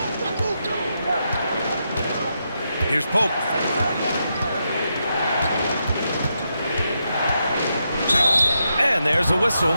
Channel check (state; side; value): inverted; both; correlation -0.84